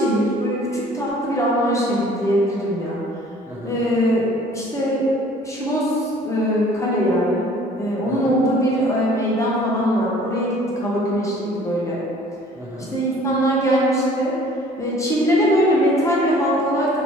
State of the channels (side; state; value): both; normal; correlation 0.52